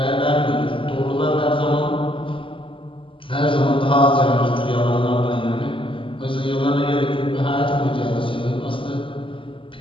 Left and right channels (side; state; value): right; late; 0.25 ms